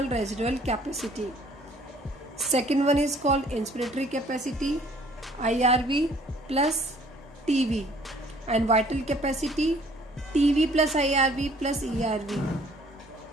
residual capacity. Second one is called inspiratory capacity, IRV plus TV, and vital capacity TV plus IRV plus ERV,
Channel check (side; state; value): both; normal; correlation 0.58